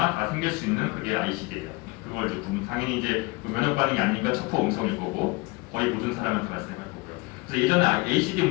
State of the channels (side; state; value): right; quieter; 24.2 dB